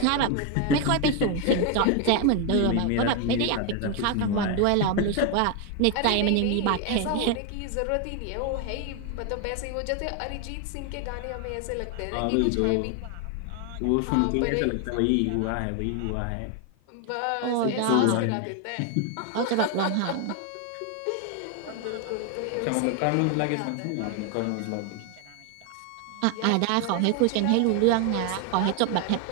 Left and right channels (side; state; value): both; different; correlation 0.01